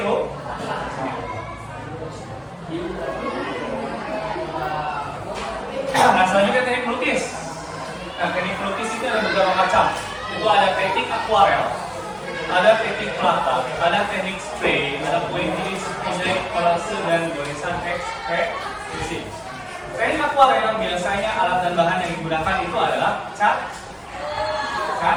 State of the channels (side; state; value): both; identical; correlation 1.00